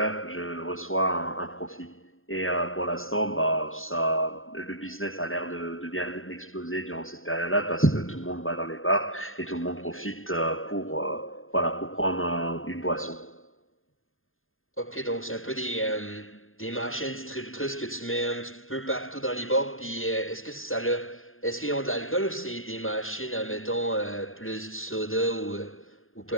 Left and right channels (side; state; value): right; late; 0.60 ms